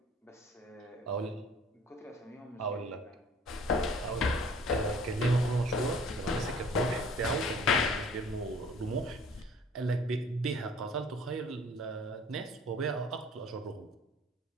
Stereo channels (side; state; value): both; normal; correlation 0.52